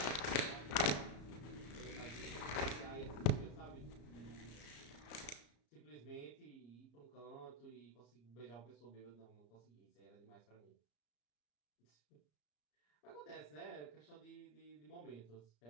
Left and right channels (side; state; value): right; late; 34 ms